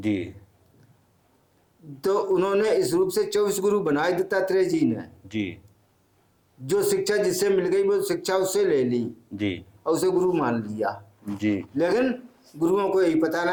तो उन्होंने इस रूप से 24 गुरु बनाए दत्तात्रेय जी ने। जी। जो शिक्षा जिससे मिल गई वो शिक्षा उससे ले ली जी। और उसे गुरु मान लिया। जी। लेकिन गुरुओं को यही पता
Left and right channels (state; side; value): identical; both; correlation 1.00